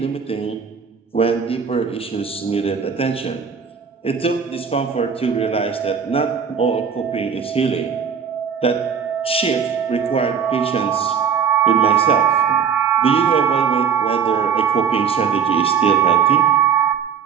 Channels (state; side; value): quieter; left; 6.8 dB